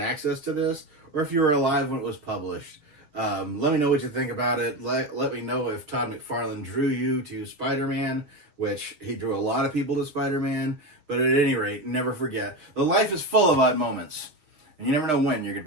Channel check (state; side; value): late; left; 6.5 ms